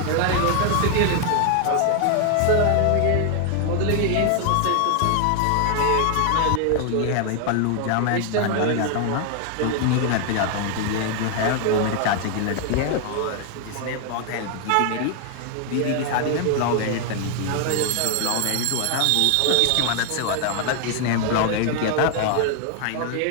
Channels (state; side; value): different; both; correlation 0.00